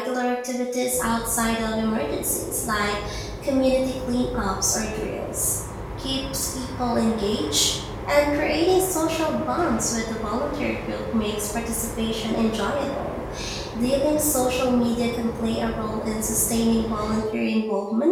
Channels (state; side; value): identical; both; correlation 1.00